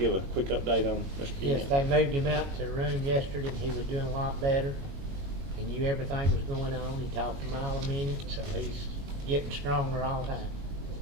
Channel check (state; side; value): late; left; 22 ms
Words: a quick update on Mr. Yant? Yes, they moved him out to the room yesterday, and he was doing a lot better. He knew everything was going on. He talked a mile a minute, so he's getting stronger all the time.